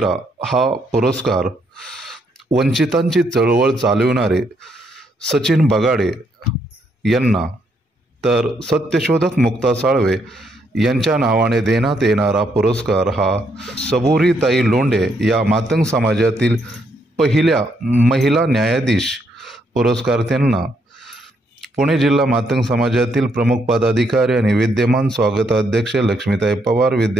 हा पुरस्कार वंचितांची चळवळ चालविणारे सचिन बगाडे यांना, तर सत्यशोधक मुक्ता साळवे यांच्या नावाने देण्यात येणारा पुरस्कार हा सबुरीताई लोंढे या मातंग समाजातील पहिल्या महिला न्यायाधीश पुरस्कार्थ्यांना, पुणे जिल्हा मातंग समाजातील प्रमुख पदाधिकारी आणि विद्यमान स्वागताध्यक्ष लक्ष्मीताई पवार,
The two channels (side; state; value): both; normal; correlation 0.74